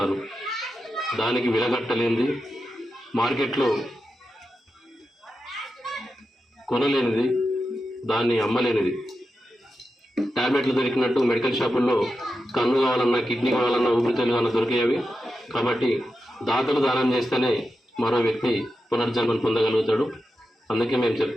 దానికి విలగట్టలేనిది, మార్కెట్లో కొనలేనిది, దాన్ని అమ్మలేనిది. టాబ్లెట్లు దొరికినట్టు మెడికల్ షాపుల్లో కన్ను కావాలన్నా, కిడ్నీ కావాలన్నా, ఊపిరితిత్తులు కావాలన్నా దొరికేవి. కాబట్టి దాతలు దానం చేస్తేనే మరో వ్యక్తి పునర్జన్మను పొందగలుగుతాడు. అందుకే మేము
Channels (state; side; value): normal; both; correlation 0.89